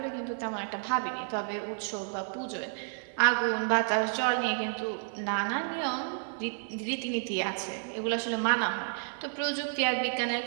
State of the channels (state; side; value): silent; left; 57 dB below the other